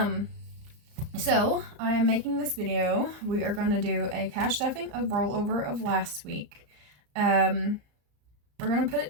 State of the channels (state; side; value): late; left; 34 ms